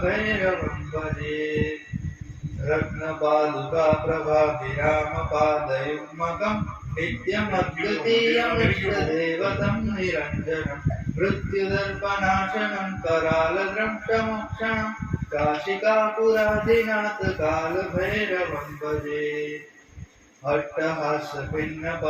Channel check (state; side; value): identical; both; correlation 1.00